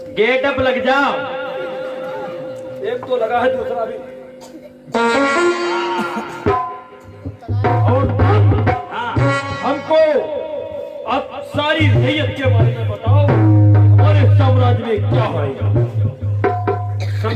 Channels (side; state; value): both; identical; correlation 1.00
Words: गेट अप लग जाओ। एक तो लगा है, दूसरा भी। और हमको अब सारी रैयत के बारे में बताओ, हमारे साम्राज्य में क्या होगा?